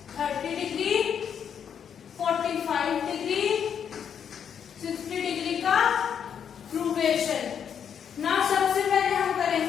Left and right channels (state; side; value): quieter; right; 8.0 dB